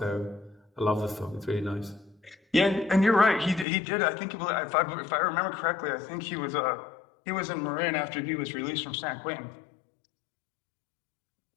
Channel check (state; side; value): drops out; right; at 3.7 s